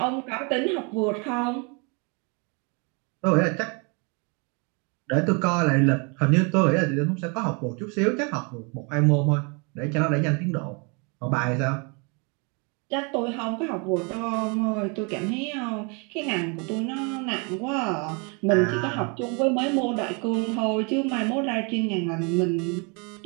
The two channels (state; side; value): quieter; left; 33.1 dB